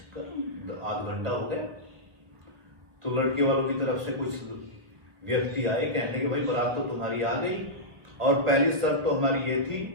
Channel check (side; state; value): left; late; 1.2 ms